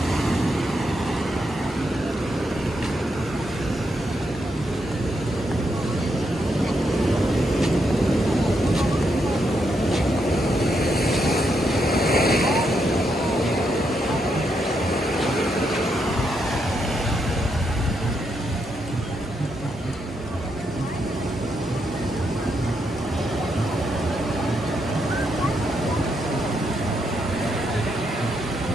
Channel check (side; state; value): both; normal; correlation 0.80